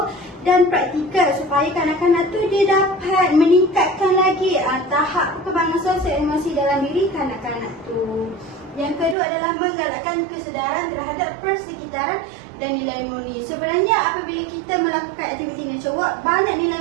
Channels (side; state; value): left; drops out; at 9.2 s